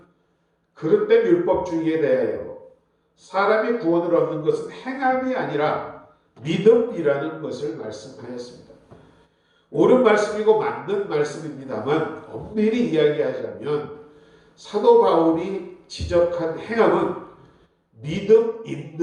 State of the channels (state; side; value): identical; both; correlation 1.00